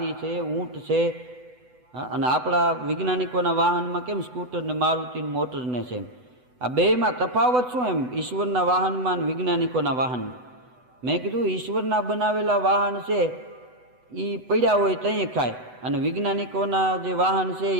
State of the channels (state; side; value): late; left; 8.0 ms